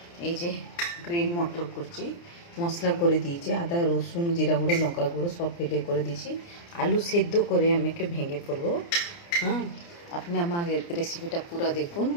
এই যে গ্রিন মটর করছি, মশলা করে দিয়েছি, আদা রসুন জিরা গুঁড়ো লঙ্কা গুঁড়ো সব ফেলে করে দিয়েছি। আলু সেদ্ধ করে আমি ভেঙে ফেলবো। হ্যাঁ, আপনি আমার রেসিপিটা পুরো দেখুন।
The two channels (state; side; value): late; right; 29 ms